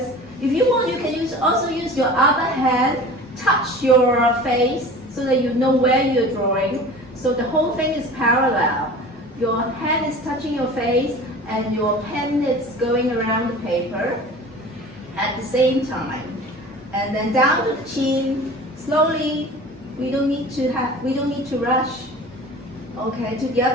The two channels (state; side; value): normal; both; correlation 0.39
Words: If you want, you can also use your other hand, touch your face so that you know where you're drawing. So the whole thing is parallel. Your hand is touching your face and your pen is going around the paper at the same time. And then down to the chin, slowly. We don't need to rush. Okay, to the